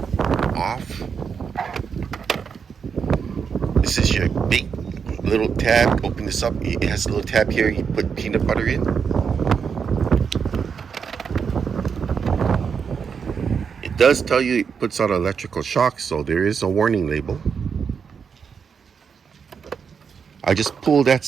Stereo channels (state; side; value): quieter; left; 6.4 dB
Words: off. This is your big little tab. Open this up. It has a little tab here. You put peanut butter in. It does tell you it puts out electrical shock, so there is a warning label. I just pulled that